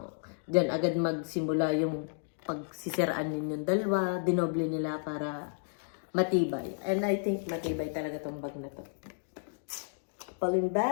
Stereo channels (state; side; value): silent; right; digital silence